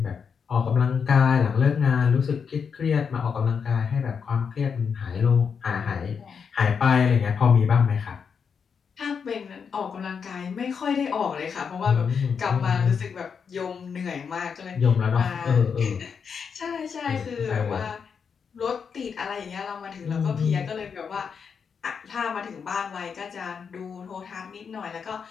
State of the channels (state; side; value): quieter; right; 6.3 dB